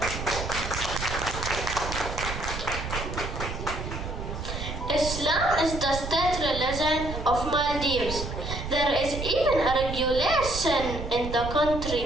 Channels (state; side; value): noise; right; rumble, 6 dB below the sound